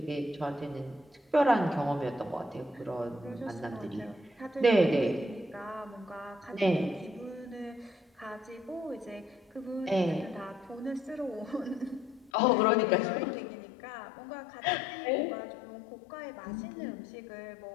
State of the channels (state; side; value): drops out; right; at 12.3 s